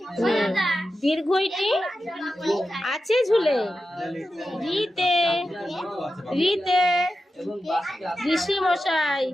দীর্ঘইটি আছে ঝুলে, রিতে রিতে ঋষি মশাই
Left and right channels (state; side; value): normal; both; correlation 0.91